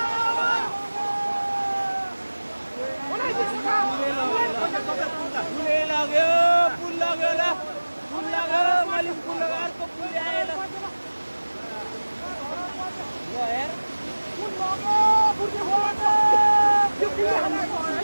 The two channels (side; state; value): both; inverted; correlation -1.00